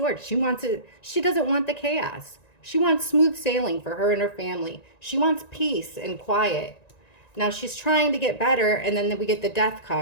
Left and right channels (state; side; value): late; right; 1.9 ms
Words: She wants it. She doesn't want the chaos. She wants smooth sailing for her and her family. She wants peace and quiet. Now she's trying to get better. And then we get the Death